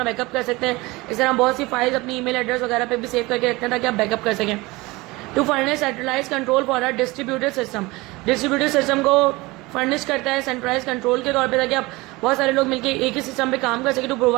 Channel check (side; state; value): left; quieter; 22.2 dB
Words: बैकअप कर सकते हैं. इस तरह बहुत सी फाइल्स अपनी ईमेल एड्रेस वगैरह पे भी सेव करके रखते हैं ताकि आप बैकअप कर सकें. To furnish centralise control for a distributed system. Distributed system को फर्निश करता है सेंट्रलाइज कंट्रोल के तौर पे ताकि आप बहुत सारे लोग मिलकर एक ही सिस्टम पे काम कर सकें. To